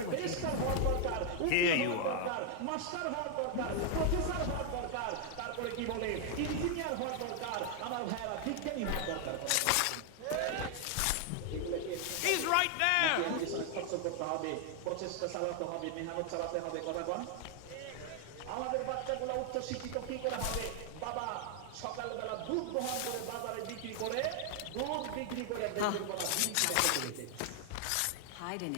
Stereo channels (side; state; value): both; different; correlation 0.00